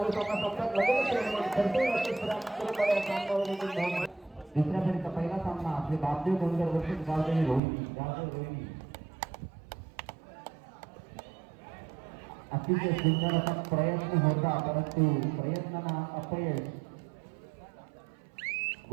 सामना संपतात. दुसऱ्या फेरीचा पहिला सामना आपले बापदेव डोंगर वर्षित गावदेवी रोहिणी. अतिशय सुंदर असा प्रयत्न होता, परंतु प्रयत्नांना अपयश.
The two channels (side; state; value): left; drops out; at 7.6 s